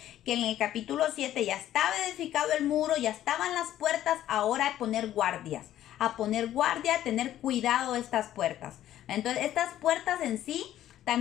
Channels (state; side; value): quieter; right; 12.5 dB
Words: que en el capítulo 7 ya estaba edificado el muro, ya estaban las puertas, ahora a poner guardias, a tener cuidado de estas puertas. Entonces, estas puertas en sí,